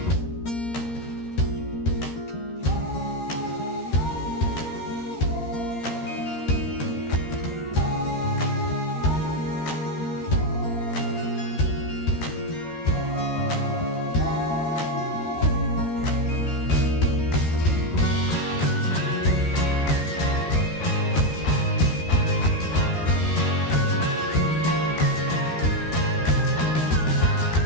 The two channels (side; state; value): right; late; 13 ms